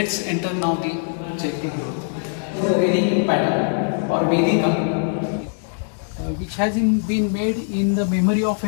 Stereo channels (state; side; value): silent; right; digital silence